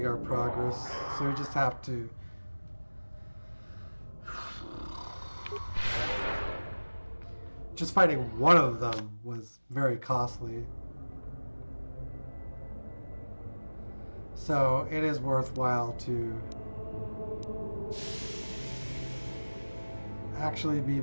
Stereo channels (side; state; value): both; inverted; correlation -1.00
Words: our progress, so we just have to just fighting one of them was very costly, so it is worthwhile to actually be